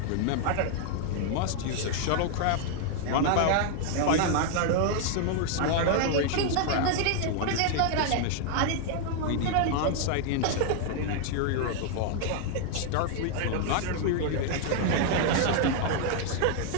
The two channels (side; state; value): both; different; correlation 0.00